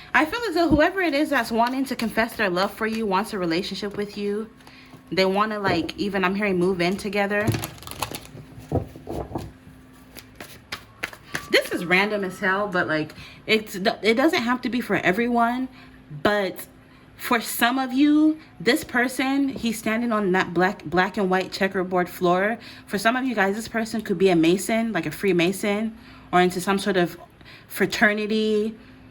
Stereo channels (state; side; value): identical; both; correlation 1.00